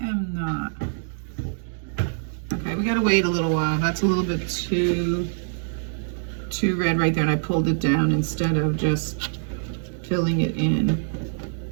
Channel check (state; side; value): silent; left; digital silence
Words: am not. Okay, we gotta wait a little while. That's a little bit too red right there, and I pulled it down instead of just filling it in.